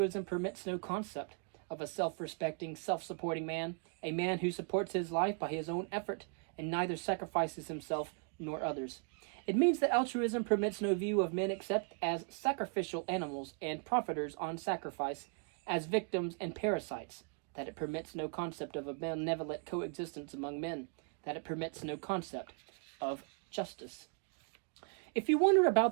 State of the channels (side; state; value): left; quieter; 39.9 dB